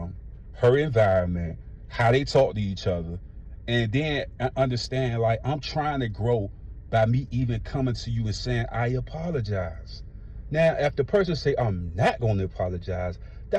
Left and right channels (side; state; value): both; identical; correlation 1.00